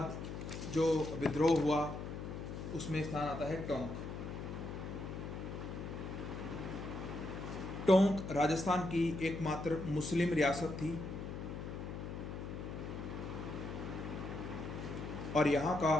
जो विद्रोह हुआ उसमें स्थान आता है टोंक। टोंक राजस्थान की एकमात्र मुस्लिम रियासत थी, और यहाँ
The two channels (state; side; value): noise; left; hum, 7 dB below the sound